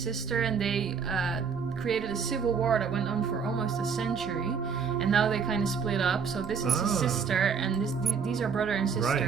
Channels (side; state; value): left; quieter; 6.2 dB